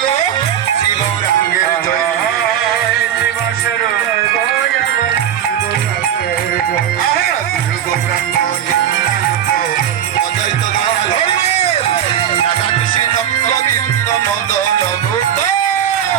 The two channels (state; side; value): quieter; left; 9.9 dB